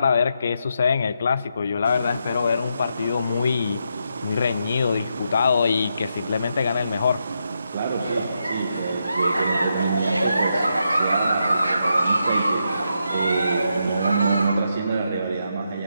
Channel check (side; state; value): both; inverted; correlation -0.82